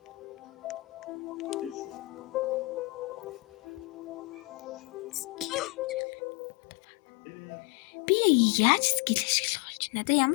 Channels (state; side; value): drops out; right; at 6.0 s